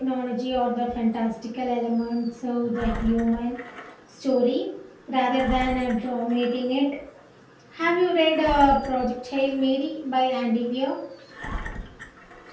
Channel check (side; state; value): both; identical; correlation 1.00